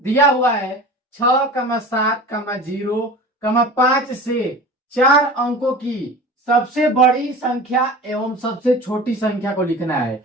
हुआ है 6,7,0,5 से 4 अंकों की सबसे बड़ी संख्या एवं सबसे छोटी संख्या को लिखना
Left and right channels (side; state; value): both; normal; correlation 0.36